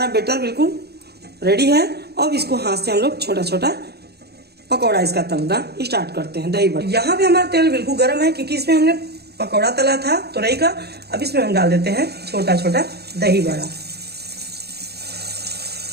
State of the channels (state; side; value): late; left; 0.47 ms